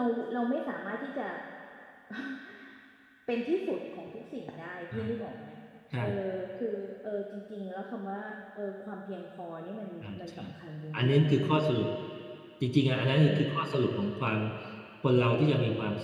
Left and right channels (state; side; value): identical; both; correlation 1.00